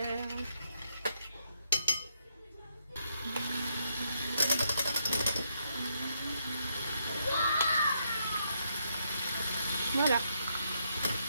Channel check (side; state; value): both; inverted; correlation -0.77